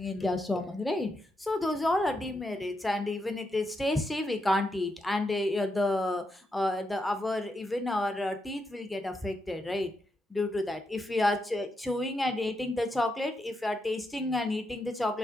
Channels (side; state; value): both; normal; correlation 0.83